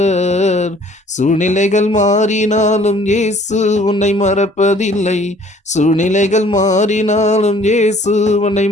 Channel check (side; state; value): both; normal; correlation 0.56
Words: சூழ்நிலைகள் மாறினாலும் இயேசு உன்னை மறப்பதில்லை, சூழ்நிலைகள் மாறினாலும் இயேசு உன்னை